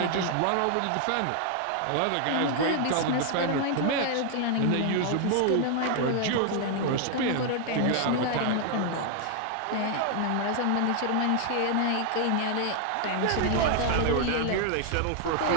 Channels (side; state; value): both; different; correlation 0.00